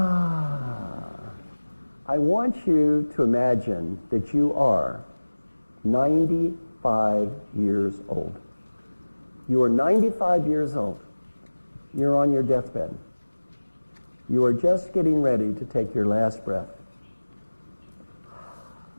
I want you to imagine that you are 95 years old. You are 95 years old. You're on your deathbed. You are just getting ready to take your last breath.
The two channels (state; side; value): inverted; both; correlation -1.00